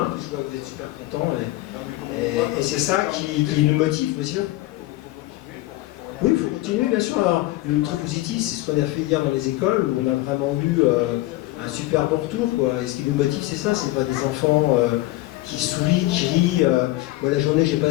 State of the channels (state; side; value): quieter; right; 18.0 dB